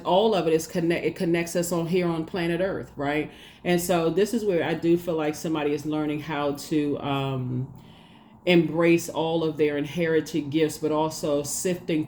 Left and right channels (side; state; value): both; identical; correlation 1.00